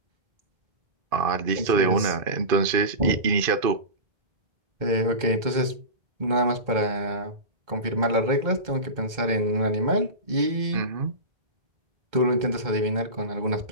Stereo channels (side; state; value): left; late; 2.1 ms